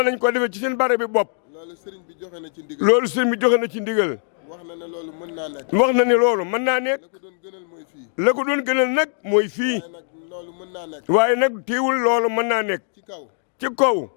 nañ ko defee ci seen barab bi bopp. loolu sëriñ bi joxe na ci ndigal. loolu sëriñ bi joxe na ci ndigal. wax na ne loolu mën naa nekk. wax na ne loolu mën naa nekk. la ko doon gënal mooy fii. la ko doon gënal nag mooy fii. waaye nag loolu mën naa nekk. waaye nag teewul loolu mën naa nekk. ci kaw. ci kaw.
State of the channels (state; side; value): silent; right; 64 dB below the other